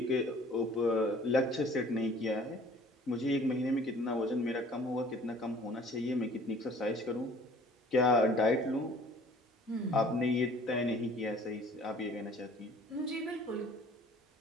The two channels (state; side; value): normal; both; correlation 0.52